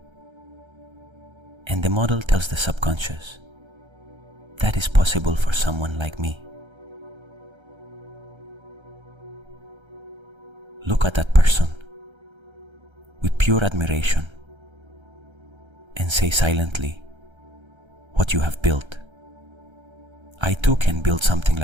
and the model tells the subconscious that is possible for someone like me. Look at that person with pure admiration and say silently what you have built. I too can build something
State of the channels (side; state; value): left; late; 1.3 ms